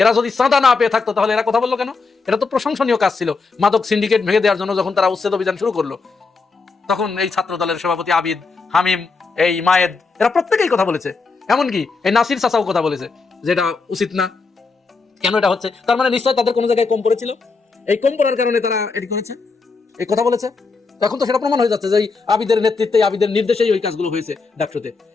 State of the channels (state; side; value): quieter; right; 4.3 dB